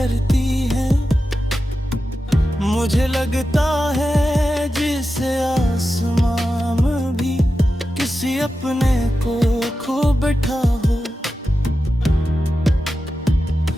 हैं, मुझे लगता है जिसे आसमान में भी किसी अपने को खो बैठा हो।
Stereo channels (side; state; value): both; normal; correlation 0.92